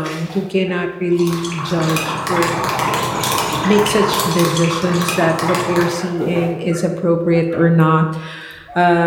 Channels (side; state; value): both; identical; correlation 1.00